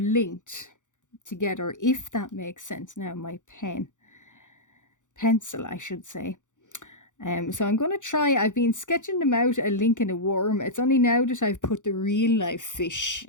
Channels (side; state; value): right; late; 0.86 ms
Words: together, if that makes sense. Now my pencil, I should say. So I'm going to try, I've been sketching them out, a link and a worm. It's only now that I've put the real life fish